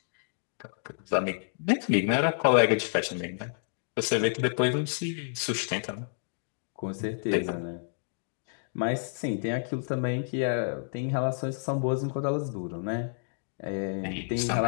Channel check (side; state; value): right; silent; digital silence